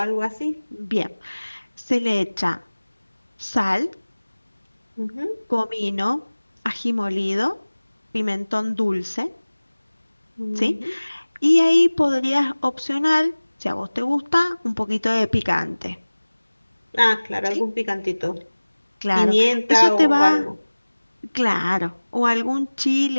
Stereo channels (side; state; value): both; inverted; correlation -1.00